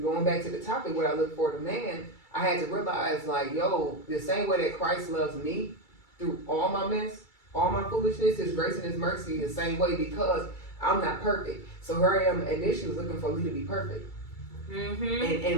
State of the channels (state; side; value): late; right; 2.3 ms